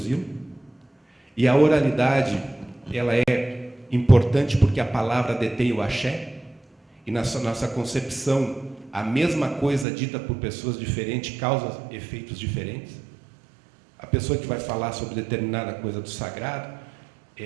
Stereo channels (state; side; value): drops out; left; at 9.9 s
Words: E a oralidade, ela é importante porque a palavra detém o axé, e na nossa concepção, a mesma coisa dita por pessoas diferentes causa efeitos diferentes. A pessoa que vai falar sobre determinada coisa do sagrado,